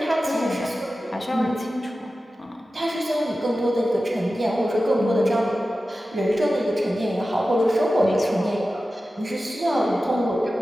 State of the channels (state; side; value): normal; both; correlation 0.94